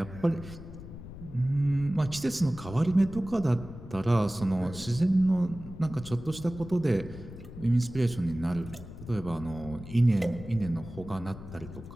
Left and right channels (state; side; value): noise; left; rumble, 13 dB below the sound